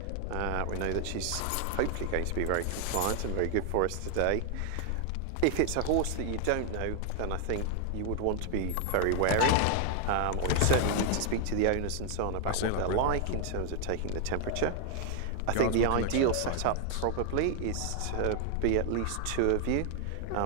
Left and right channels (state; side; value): different; both; correlation 0.00